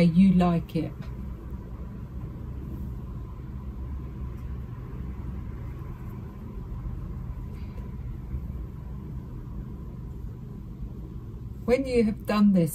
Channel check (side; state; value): both; identical; correlation 1.00